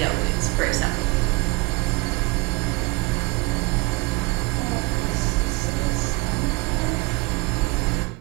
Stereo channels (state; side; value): quieter; left; 26.0 dB